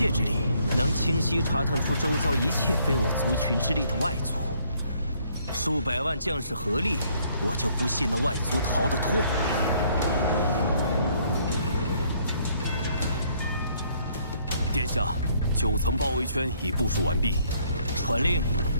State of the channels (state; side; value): inverted; both; correlation -0.66